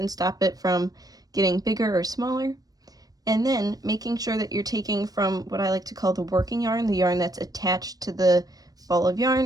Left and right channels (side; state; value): left; late; 0.18 ms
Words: stop it from getting bigger or smaller. And then making sure that you're taking from what I like to call the working yarn, the yarn that's attached to the ball of